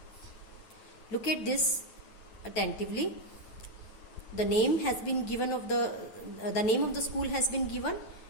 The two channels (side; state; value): right; late; 9.1 ms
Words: Look at this attentively. The name has been given of the name of the school has been given,